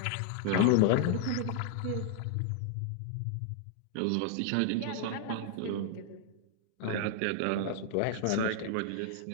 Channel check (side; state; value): both; different; correlation 0.00